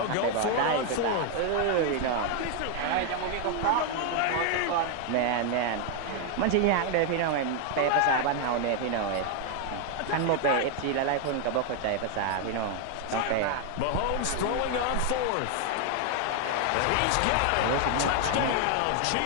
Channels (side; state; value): both; different; correlation 0.00